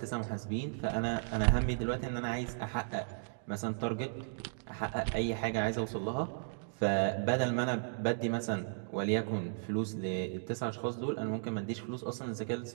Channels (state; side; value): silent; left; digital silence